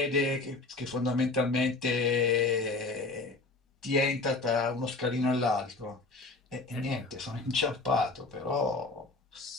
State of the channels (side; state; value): right; quieter; 3.4 dB